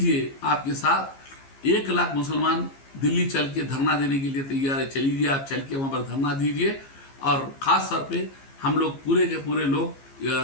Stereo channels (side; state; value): right; late; 15 ms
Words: आपके साथ 1 लाख मुसलमान दिल्ली चल के धरना देने के लिए तैयार है। चलीजिए, आप चल के वहाँ पर धरना दीजिए। और ख़ास तौर पे हम लोग पूरे के पूरे लोग